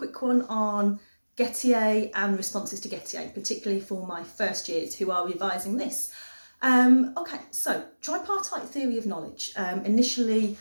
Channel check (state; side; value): inverted; both; correlation -1.00